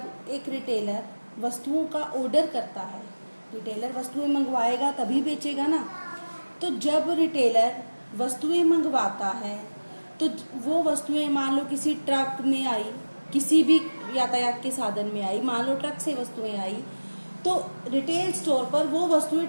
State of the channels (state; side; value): inverted; both; correlation -1.00